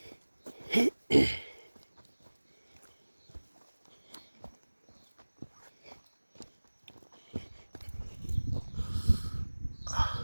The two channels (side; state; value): both; inverted; correlation -1.00